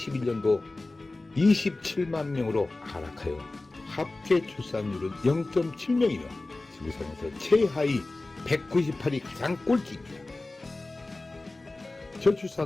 27만 명으로 하락하여 합계 출산율은 0.7명이며 지구상에서 최하위 198이 가장 꼴찌입니다.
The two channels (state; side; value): quieter; right; 3.1 dB